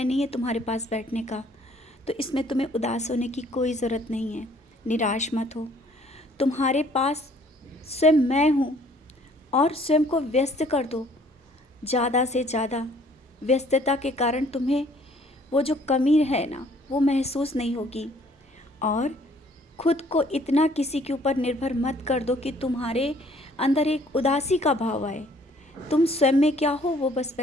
नहीं है तुम्हारे पास बैठने का। तो इसमें तुम्हें उदास होने की कोई ज़रूरत नहीं है। निराश मत हो। तुम्हारे पास स्वयं मैं हूँ और स्वयं को व्यस्त कर दो ज़्यादा से ज़्यादा। व्यस्तता के कारण तुम्हें वो जो कमी है ना, वो महसूस नहीं होगी। और खुद को इतना किसी के ऊपर निर्भर मत कर दो कि तुम्हारे अंदर एक उदासी का भाव आए। तुम स्वयं में क्या हो वो बस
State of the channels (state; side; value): normal; both; correlation 0.59